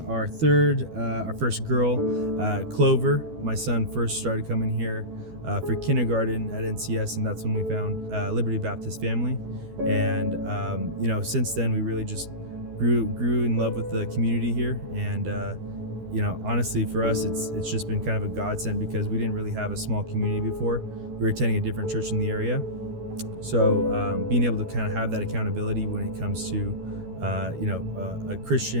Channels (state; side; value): late; left; 12 ms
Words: our first girl, Clover. My son first started coming here for kindergarten at NCS, and that's when we found Liberty Baptist Family. And since then we really just grew in love with the community here. And honestly, for us, it's just been kind of a godsend because we didn't really have a small community before. We were attending a different church in the area, so being able to kind of have that accountability when it comes to a